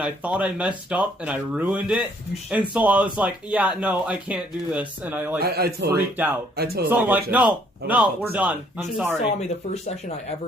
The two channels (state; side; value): normal; both; correlation 0.64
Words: thought I messed up and I ruined it, and so I was like, yeah, no, I can't do this, and I like freaked out. So I'm like, no, we're done. I'm sorry. You saw me the first session I